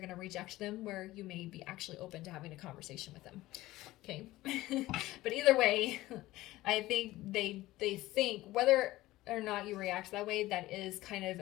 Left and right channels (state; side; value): quieter; right; 17.3 dB